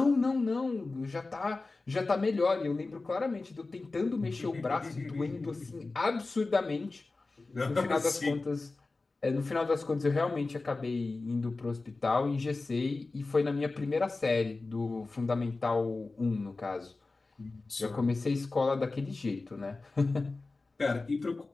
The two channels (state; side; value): quieter; right; 3.5 dB